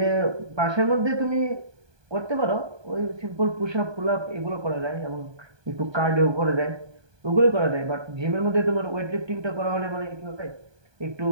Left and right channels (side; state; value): left; late; 1.2 ms